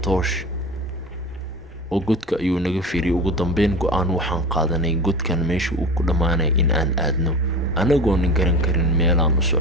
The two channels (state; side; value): normal; both; correlation 0.31